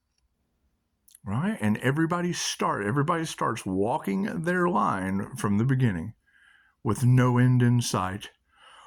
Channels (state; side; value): identical; both; correlation 1.00